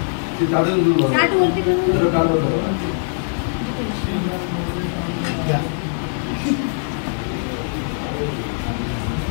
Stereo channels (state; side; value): silent; right; digital silence